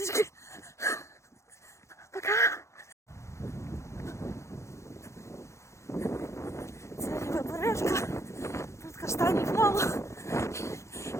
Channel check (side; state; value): right; late; 0.14 ms